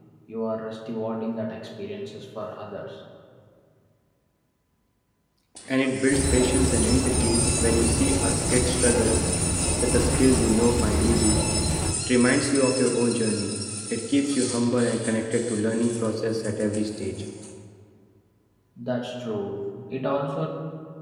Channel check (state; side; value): identical; both; correlation 1.00